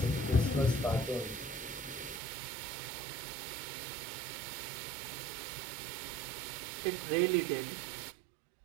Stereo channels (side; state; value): left; drops out; at 2.2 s